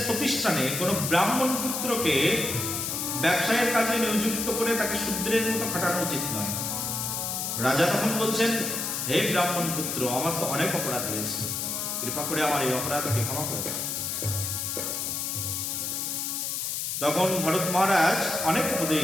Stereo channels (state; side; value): noise; left; hiss, 2 dB below the sound